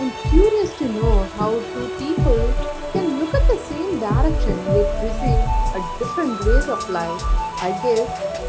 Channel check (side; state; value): both; identical; correlation 1.00